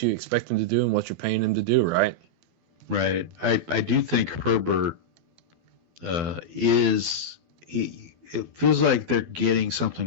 you expect him to do and what you're paying him to do, right? Right. I do think Herbert it feels like they're getting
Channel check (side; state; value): left; late; 12 ms